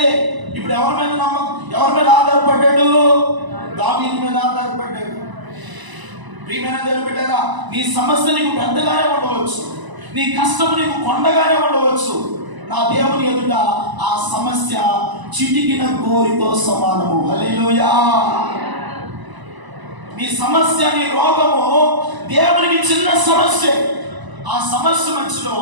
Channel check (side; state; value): left; late; 1.0 ms